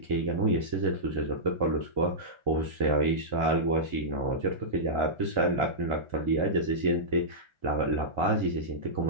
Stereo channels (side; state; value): left; late; 2.2 ms